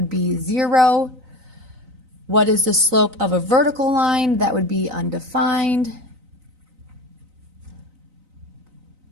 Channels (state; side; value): late; left; 3.9 ms